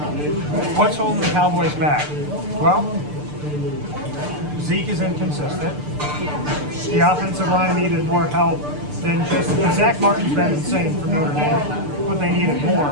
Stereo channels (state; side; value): late; left; 6.8 ms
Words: what's holding the Cowboys back? Well, Zeke is inconsistent. The offensive line needed more help than just Zach Martin's been insane for Notre Dame, but they needed